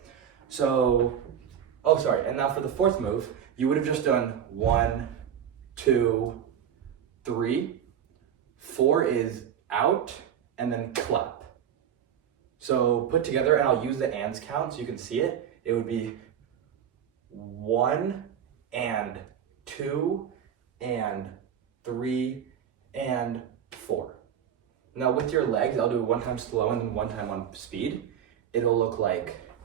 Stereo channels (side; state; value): left; quieter; 9.0 dB